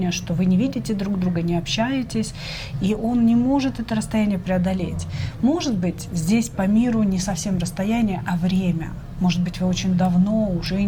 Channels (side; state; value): both; identical; correlation 1.00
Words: что вы не видите друг друга, не общаетесь, и он не может это расстояние преодолеть. Может быть, здесь по миру не совсем расстояние, а время. Может быть, вы очень давно уже